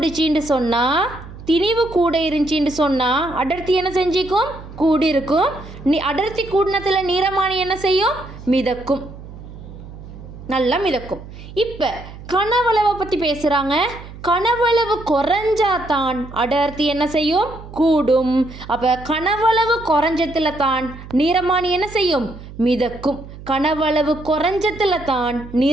கூட இருந்துச்சின்னு சொன்னால் அடர்த்தி என்ன செஞ்சிக்கும்? கூடி இருக்கும். அடர்த்தி கூடினத்தில் நீரமானி என்ன செய்யும்? மிதக்கும். நல்லா மிதக்கும். இப்போ கனவளவை பற்றி பேசுகிறாங்க. கனவளவு குறைஞ்சாதான் அடர்த்தி என்ன செய்யும்? கூடும். அப்போ கனவளவு குறைஞ்சத்தில் தான் நீரமானி என்ன செய்யும்? மிதக்கும். கனவளவு குறைஞ்சத்தில் தான்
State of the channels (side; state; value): right; noise; hum, 15 dB below the sound